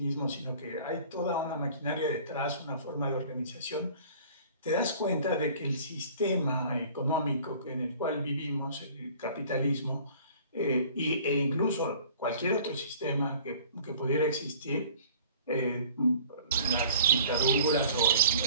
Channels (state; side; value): inverted; both; correlation -0.49